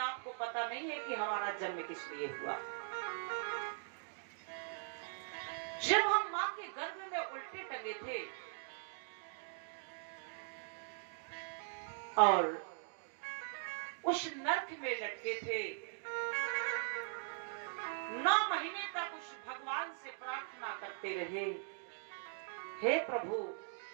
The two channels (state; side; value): silent; left; digital silence